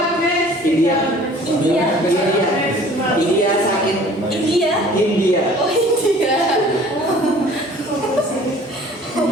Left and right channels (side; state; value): both; normal; correlation 0.50